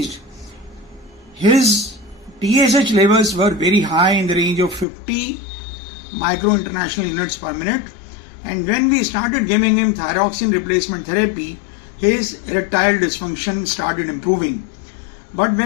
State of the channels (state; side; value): drops out; right; at 4.9 s